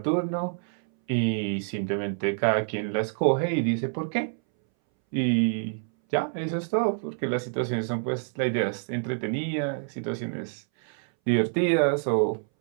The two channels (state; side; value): silent; left; 60 dB below the other